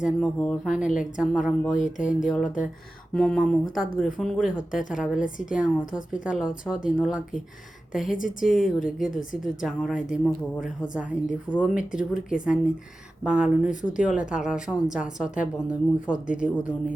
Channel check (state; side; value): normal; both; correlation 0.95